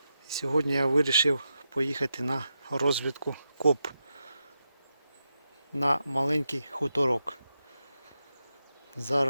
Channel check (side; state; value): both; inverted; correlation -0.87